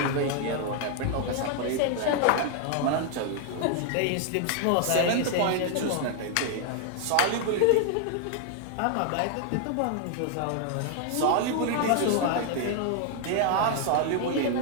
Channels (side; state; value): both; different; correlation 0.00